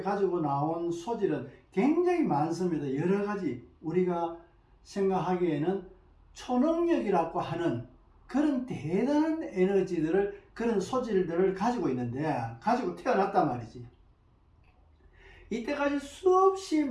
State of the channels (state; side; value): identical; both; correlation 1.00